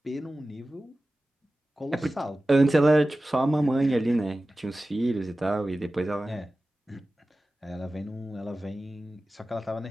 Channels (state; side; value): normal; both; correlation 0.96